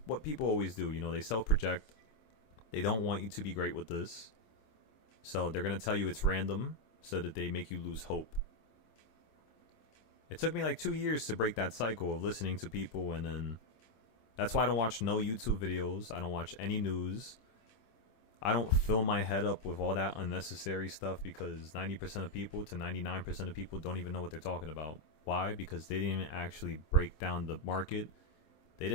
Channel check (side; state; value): right; late; 26 ms